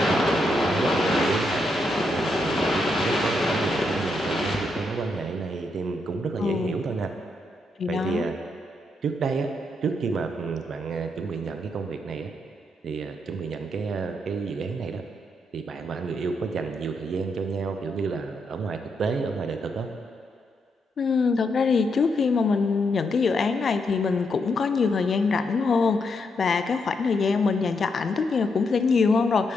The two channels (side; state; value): both; normal; correlation 0.80